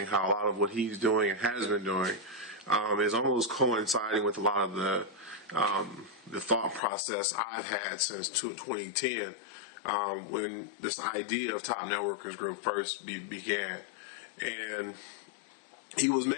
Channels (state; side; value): drops out; right; at 6.8 s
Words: how a lot of what he's doing and has been doing is almost coinciding with a lot of the thought process I've had since 2010 when this idea of Top Networkers Group first began. And he was